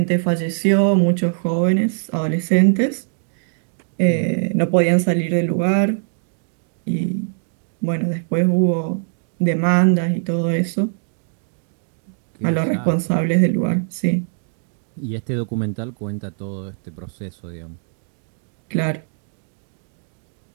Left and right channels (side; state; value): left; silent; digital silence